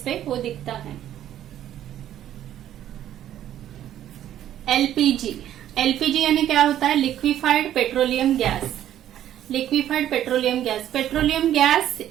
पे वो दिखता है. एलपीजी यानी क्या होता है? Liquefied petroleum gas. Liquefied petroleum gas. Petroleum gas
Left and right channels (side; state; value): left; quieter; 11.6 dB